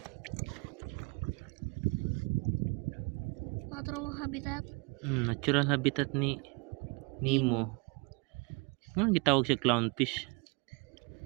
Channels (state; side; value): quieter; left; 29.3 dB